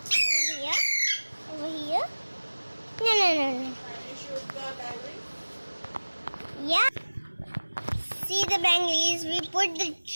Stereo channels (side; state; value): both; inverted; correlation -1.00